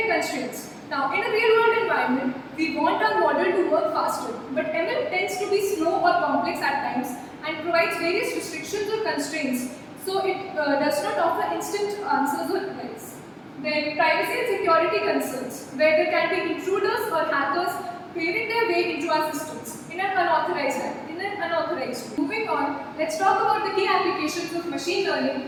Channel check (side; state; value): both; identical; correlation 1.00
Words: constraints. Now, in a real-world environment, we want our model to work faster, but ML tends to be slow or complex at times and provides various restrictions or constraints. So it does not offer instant answers or replies. Then privacy and security concerns, where there can be intruders or hackers paving their way into our systems in an unauthorized way. Moving on, let's talk about the key applications of machine learning